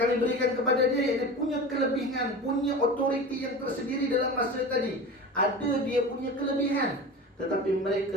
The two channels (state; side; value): normal; both; correlation 0.31